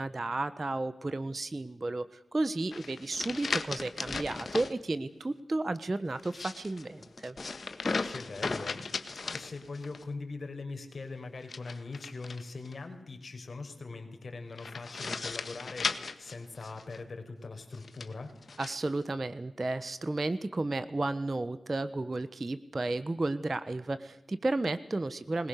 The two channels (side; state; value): both; normal; correlation 0.94